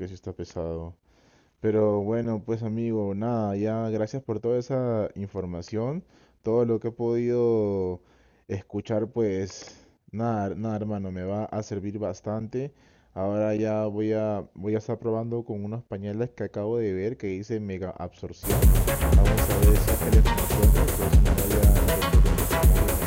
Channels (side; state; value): both; identical; correlation 1.00